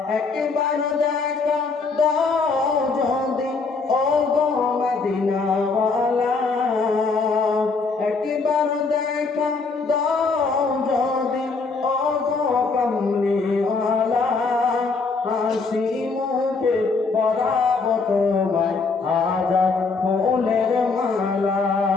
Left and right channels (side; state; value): right; quieter; 4.3 dB